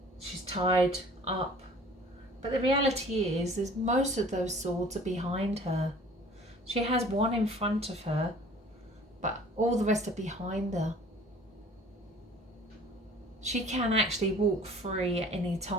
She's tied up. But the reality is most of those swords are behind her. She has one in front of her, but all the rest are behind her. She can actually walk free at any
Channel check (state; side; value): normal; both; correlation 0.49